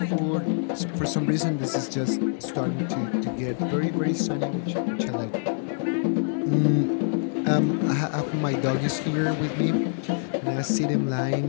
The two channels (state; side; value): silent; right; 56 dB below the other